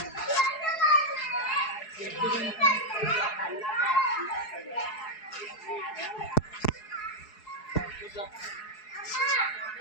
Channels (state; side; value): late; right; 4.7 ms